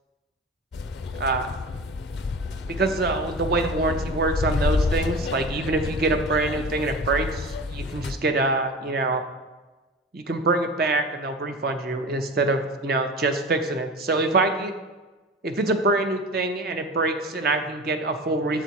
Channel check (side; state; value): both; normal; correlation 0.34